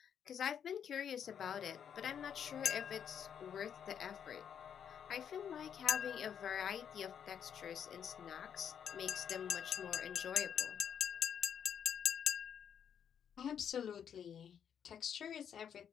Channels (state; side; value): quieter; right; 8.3 dB